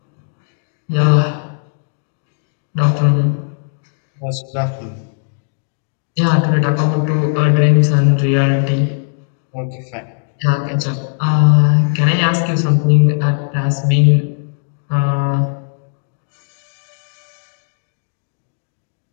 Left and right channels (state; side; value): silent; right; digital silence